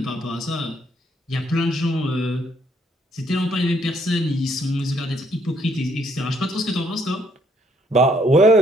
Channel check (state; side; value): normal; both; correlation 0.68